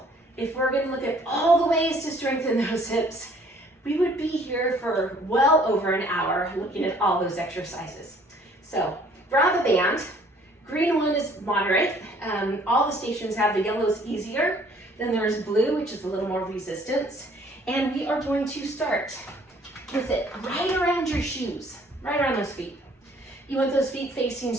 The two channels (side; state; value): both; normal; correlation 0.58